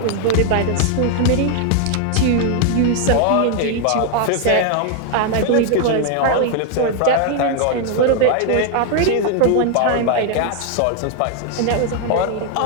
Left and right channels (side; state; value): both; different; correlation 0.00